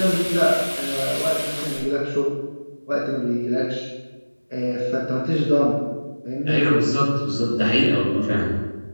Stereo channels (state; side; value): inverted; both; correlation -1.00